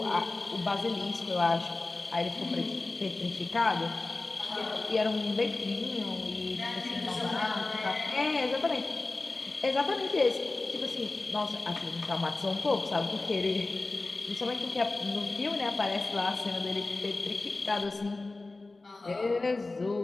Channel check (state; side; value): quieter; right; 3.3 dB